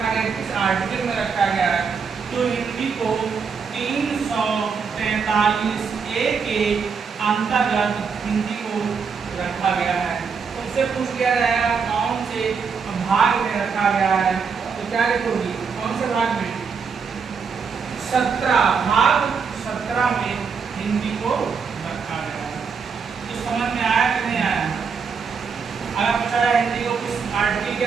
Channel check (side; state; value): left; quieter; 5.7 dB